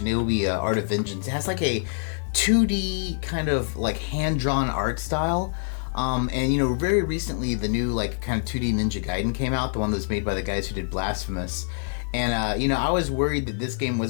Art of Vengeance. It has like a 2D kind of like hand-drawn art style. And you know, very recently the new like kind of 2D Ninja Gaiden came out, the one that was made by the guys who did Blasphemous. And you know, I was worried that this game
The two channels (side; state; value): right; silent; 61 dB below the other